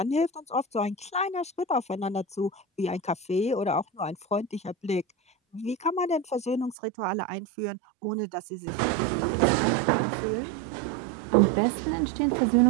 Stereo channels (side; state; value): left; drops out; at 6.8 s